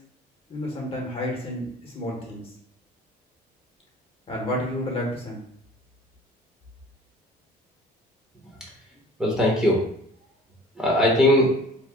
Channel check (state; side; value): normal; both; correlation 0.47